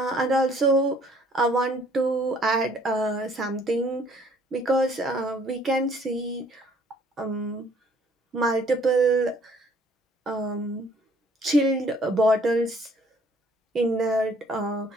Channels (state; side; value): normal; both; correlation 0.60